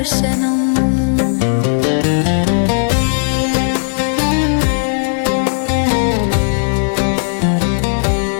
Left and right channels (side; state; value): right; silent; digital silence